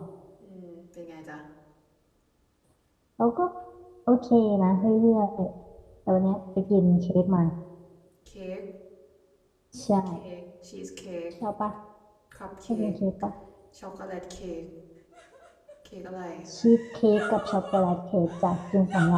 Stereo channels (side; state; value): both; identical; correlation 1.00